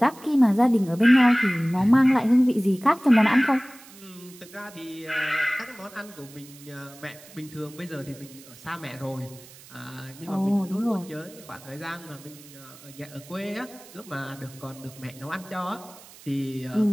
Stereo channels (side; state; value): right; noise; hiss, 21 dB below the sound